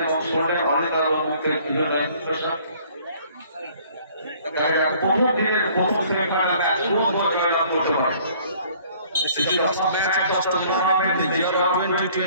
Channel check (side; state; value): both; inverted; correlation -0.56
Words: এবং শুনলেন অনেকের মুখের বিভিন্ন ইনফরমেশন। প্রথম দিনের প্রথম সেমিফাইনাল ম্যাচ জয়লাভ করতে পারে। This is the last match of the tournament in the year of